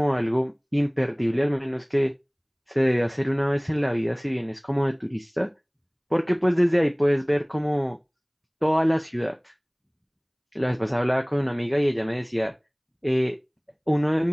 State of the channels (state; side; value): identical; both; correlation 1.00